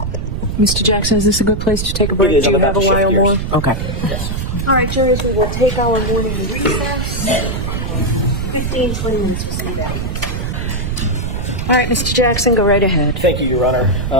Mr. Jackson, is this a good place to take a break? It is. Do I'm you about have a to shift while gears. more? Okay. Yes. All right, jurors, we will take our morning recess. 15, 20 minutes, we'll see you back. All right, Mr. Jackson, go right ahead. Thank you, Your Honor.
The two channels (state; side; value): noise; right; rumble, 3 dB below the sound